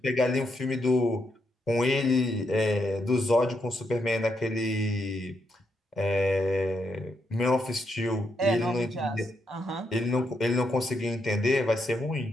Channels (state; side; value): normal; both; correlation 0.80